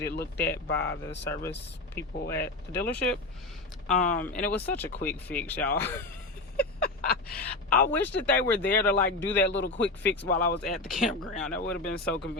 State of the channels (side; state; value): right; quieter; 3.1 dB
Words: it looked at by the service people at the dealership. And it was such a quick fix, y'all. I wish that they were there to like do that little quick fix while I was at the campground. That would have been so